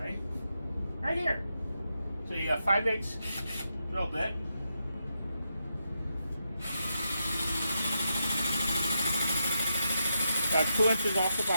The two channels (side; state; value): both; inverted; correlation -0.85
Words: right here. So you got 5/8 drill bit. About 2 inches off the